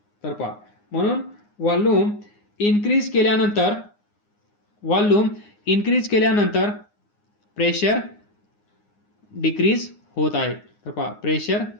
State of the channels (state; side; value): late; right; 9.7 ms